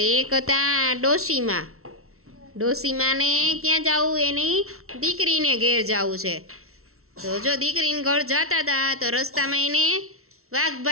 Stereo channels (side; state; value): left; late; 0.63 ms